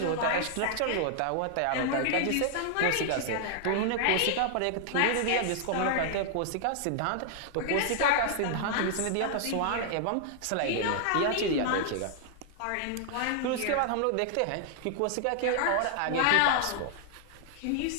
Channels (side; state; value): both; different; correlation 0.00